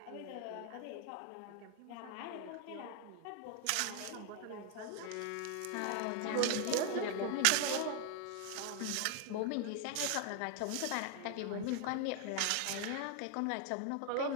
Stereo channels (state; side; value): different; both; correlation 0.00